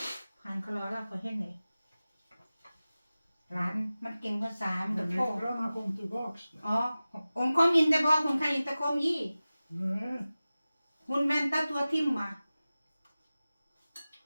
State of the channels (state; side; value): inverted; both; correlation -0.96